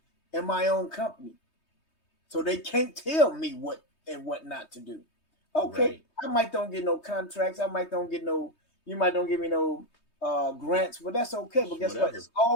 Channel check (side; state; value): right; late; 3.2 ms